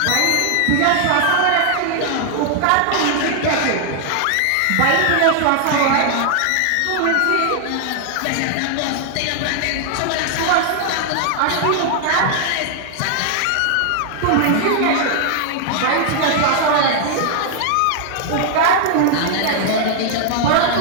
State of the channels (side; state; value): both; different; correlation 0.00